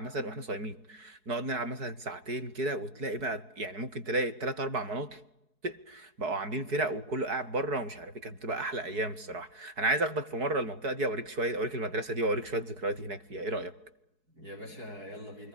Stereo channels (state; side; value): late; left; 4.7 ms